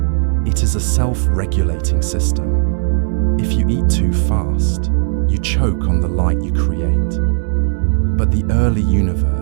It is a self-regulating system. If you eat too fast, you choke on the light you create. But the early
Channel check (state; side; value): silent; left; digital silence